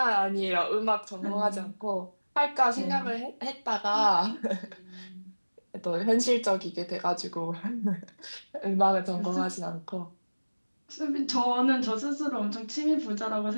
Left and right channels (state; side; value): inverted; both; correlation -1.00